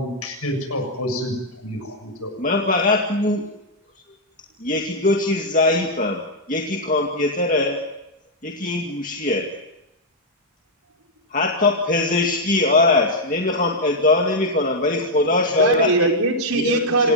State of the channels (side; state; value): both; normal; correlation -0.03